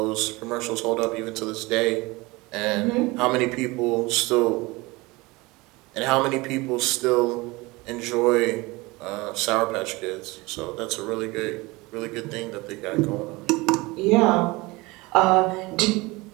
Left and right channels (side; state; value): left; quieter; 23.0 dB